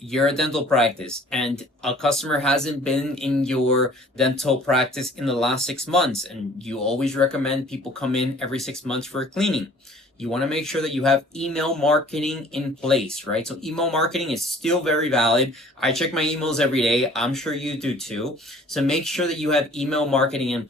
a dental practice and a customer hasn't been in your dental practice in the last 6 months, and you always recommend people come in every 6 months for a cleaning, you want to make sure that you have email marketing in place, right? So email marketing is still very valid. I check my emails every day. I'm sure you do too. So make sure that you have email marketing in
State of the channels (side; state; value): both; normal; correlation 0.52